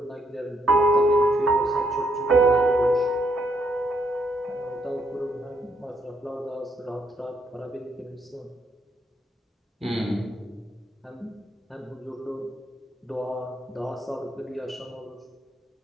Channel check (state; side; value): normal; both; correlation 0.74